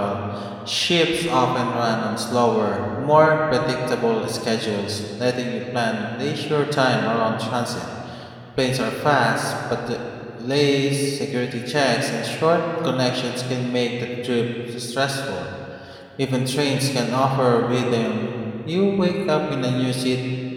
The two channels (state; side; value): identical; both; correlation 1.00